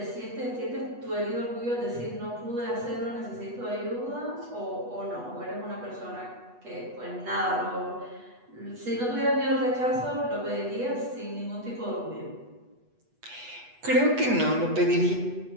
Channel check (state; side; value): late; left; 8.2 ms